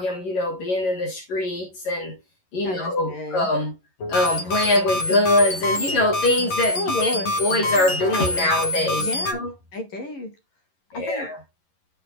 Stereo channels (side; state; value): right; late; 11 ms